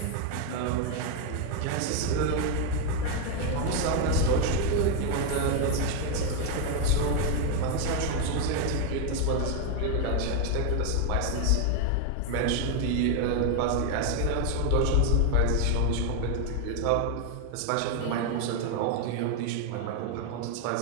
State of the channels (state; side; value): different; both; correlation 0.01